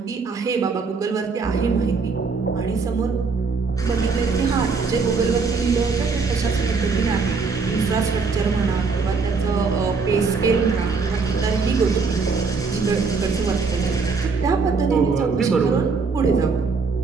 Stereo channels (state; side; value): quieter; left; 4.7 dB